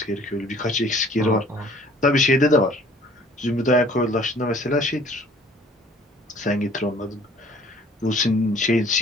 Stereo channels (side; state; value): both; normal; correlation 0.53